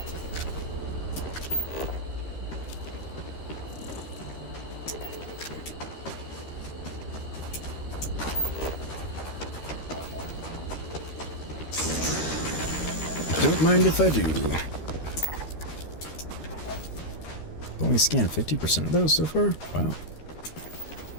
Don't mind if I do. Only scanned 50% of those so far? Wow.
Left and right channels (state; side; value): late; right; 13 ms